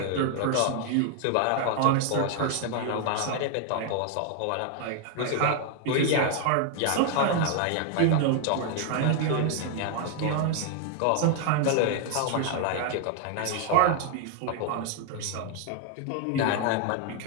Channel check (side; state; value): both; different; correlation 0.00